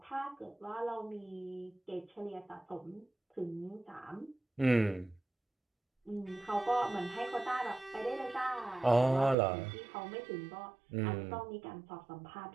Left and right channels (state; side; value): drops out; left; at 9.3 s